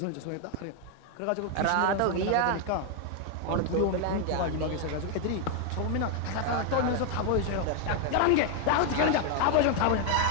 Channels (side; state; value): both; different; correlation 0.00